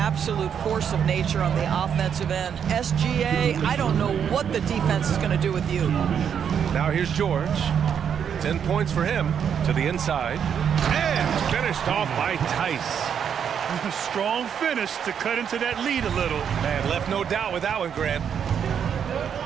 force of nature on the offensive end. SGA, I don't know what the defense is going to do with you. Now here's George. 10 points for him to the inside. And finished off by Tice. A strong finish to cut into that lead a little. Man, left no doubt with that one, Grant.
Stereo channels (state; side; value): quieter; left; 8.0 dB